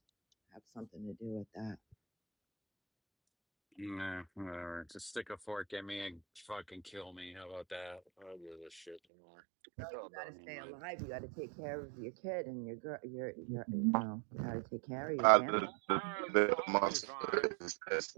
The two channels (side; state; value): left; drops out; at 9.0 s